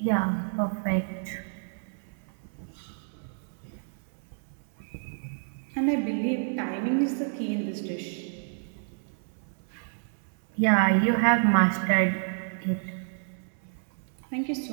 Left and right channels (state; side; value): silent; left; 58 dB below the other